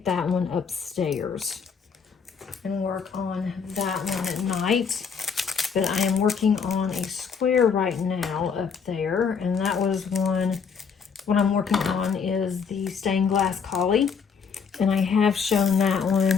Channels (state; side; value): quieter; right; 6.1 dB